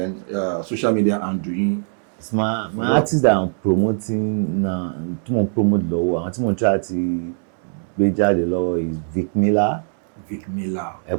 social media handle yín. My artist that I'm promoting na tí mo promote lọ́wọ́, àwọn tí mo try ti gbé jáde lọ́wọ́ is Vic Miller.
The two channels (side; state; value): left; silent; 65 dB below the other